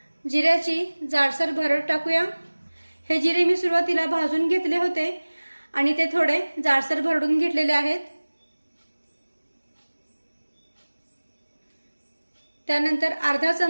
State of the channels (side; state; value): both; inverted; correlation -1.00